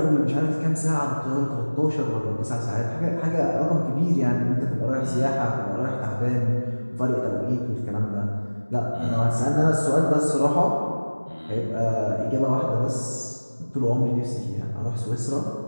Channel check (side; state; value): both; inverted; correlation -1.00